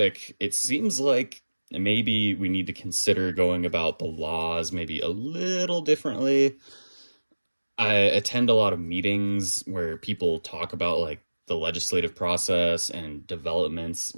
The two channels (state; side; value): inverted; both; correlation -1.00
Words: it seems like maybe we need to consider going about the laws maybe a little differently. I attend a lot of meetings where people talk about like the legislative process and developments